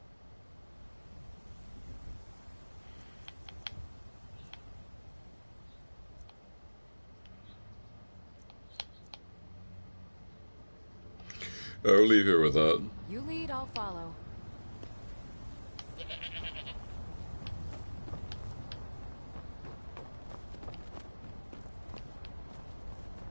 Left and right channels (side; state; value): both; inverted; correlation -1.00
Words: I'll leave here with that. You lead, I'll follow.